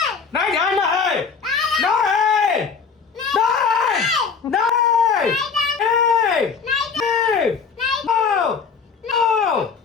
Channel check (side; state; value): right; quieter; 5.7 dB